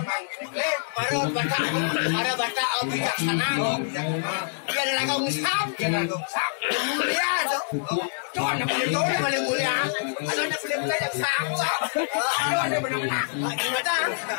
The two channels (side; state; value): right; silent; digital silence